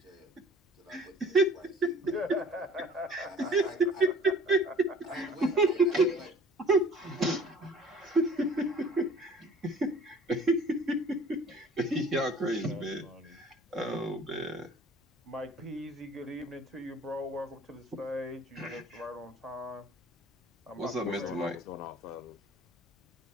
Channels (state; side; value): normal; both; correlation 0.50